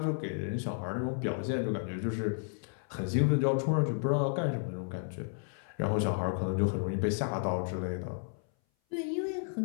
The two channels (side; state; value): right; silent; 56 dB below the other